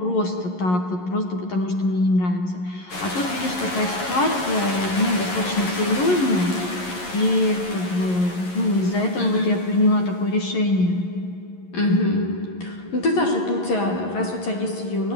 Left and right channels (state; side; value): late; right; 11 ms